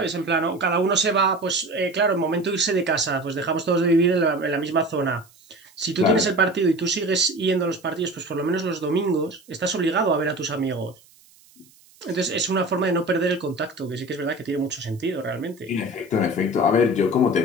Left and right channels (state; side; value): noise; right; hiss, 28 dB below the sound